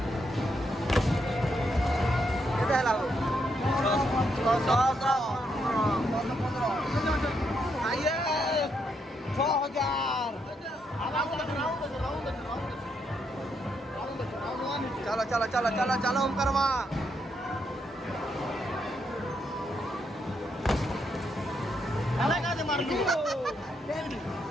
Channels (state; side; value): normal; both; correlation 0.78